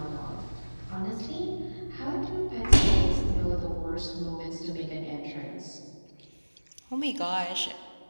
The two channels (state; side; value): inverted; both; correlation -1.00